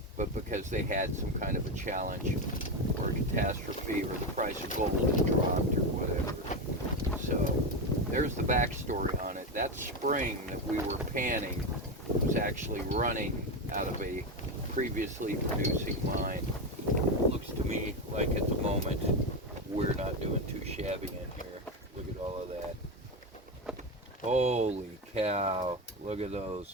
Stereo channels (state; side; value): normal; both; correlation 0.13